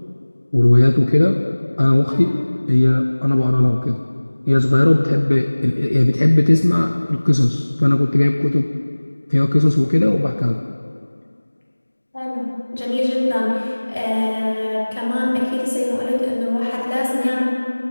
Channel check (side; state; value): both; inverted; correlation -1.00